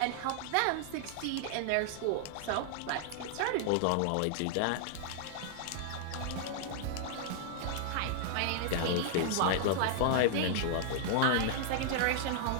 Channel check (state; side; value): different; both; correlation -0.01